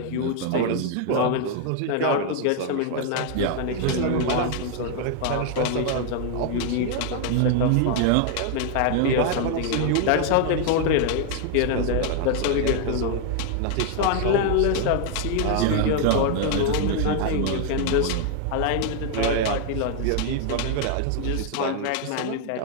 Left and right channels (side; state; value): both; different; correlation 0.00